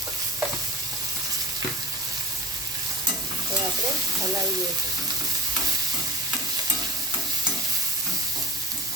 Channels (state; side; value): normal; both; correlation 0.35